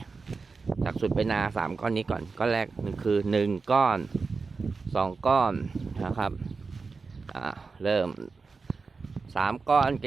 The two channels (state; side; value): quieter; left; 4.5 dB